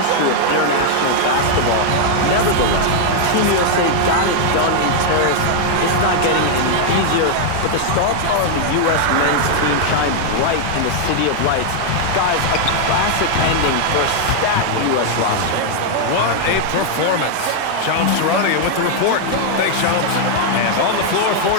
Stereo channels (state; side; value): different; both; correlation 0.00